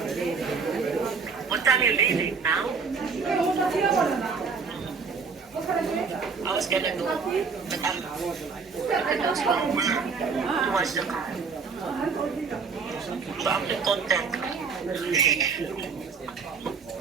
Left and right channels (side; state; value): left; quieter; 5.2 dB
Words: What time you leaving now? I was gonna go, but I'm to watch the car. So I'm the content.